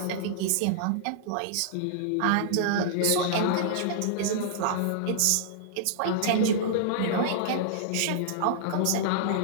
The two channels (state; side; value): different; both; correlation -0.02